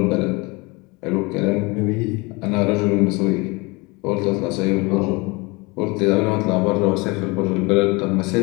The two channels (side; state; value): right; quieter; 26.4 dB